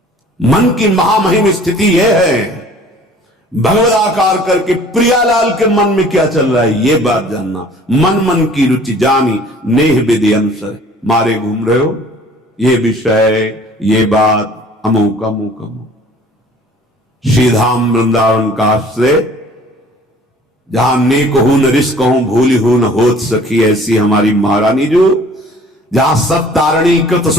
मन की महामहिम स्थिति यह है, भगवदाकार करके प्रियालाल के मन में क्या चल रहा है, ये बात जानना। मन मन की रुचि जानी नेह विधि अनुसर। मारे घूम रहे हो, ये विषय, ये बात, अमुक अमुक अमुक। श्रीधाम वृंदावन का आश्रय, जहां ने कहूं न रिस कहूं भूली हूं न होत सखी, ऐसी हमारी महारानी जो, जहां सब तारणी कृत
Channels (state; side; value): normal; both; correlation 0.51